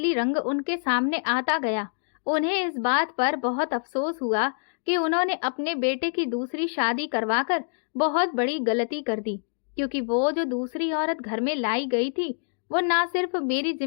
रंग उनके सामने आता गया, उन्हें इस बात पर बहुत अफसोस हुआ कि उन्होंने अपने बेटे की दूसरी शादी करवाकर बहुत बड़ी गलती कर दी, क्योंकि वो जो दूसरी औरत घर में लाई गई थी, वो ना सिर्फ मेरी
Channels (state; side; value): silent; right; digital silence